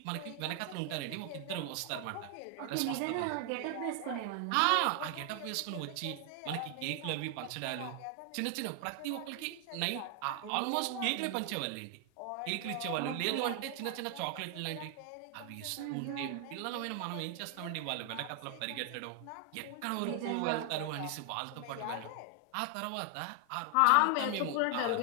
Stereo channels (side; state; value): both; different; correlation 0.00